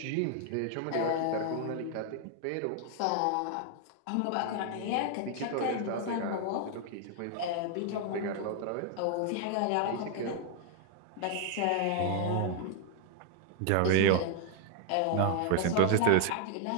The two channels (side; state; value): both; different; correlation 0.00